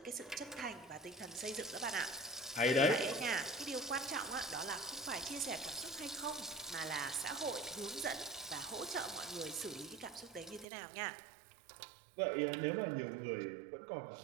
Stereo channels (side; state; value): left; drops out; at 10.7 s